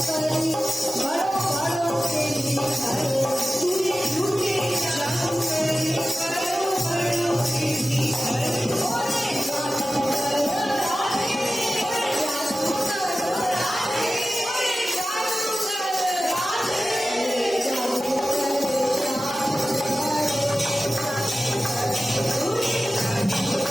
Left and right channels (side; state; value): both; normal; correlation 0.95